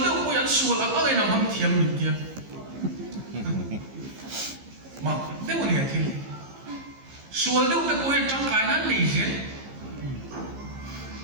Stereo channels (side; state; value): left; late; 15 ms